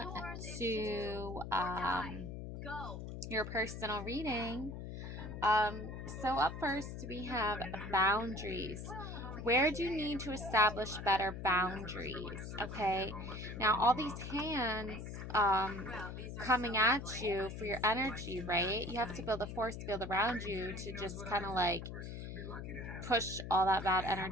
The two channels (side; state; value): left; noise; hum, 8 dB below the sound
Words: to your personal reading. Um, so, up first, we have boundaries. Where do you need to establish better boundaries? Okay, now all these hands coming at you for your energy, right? You have to build a force field around you to just kind of like push all that bad